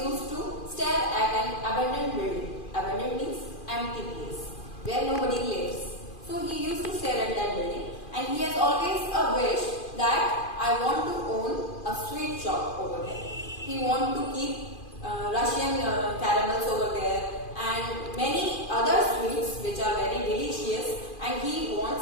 to stare at an abandoned building. Abandoned means empty place where nobody lives. So he used to stare at that building, and he has always a wish that I want to own a sweet shop over there. He wants to keep Russian caramels over there and many other sweets which are very delicious, and he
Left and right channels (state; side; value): late; right; 2.4 ms